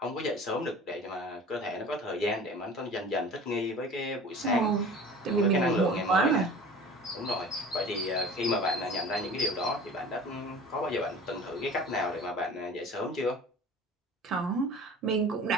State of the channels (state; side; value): normal; both; correlation 0.41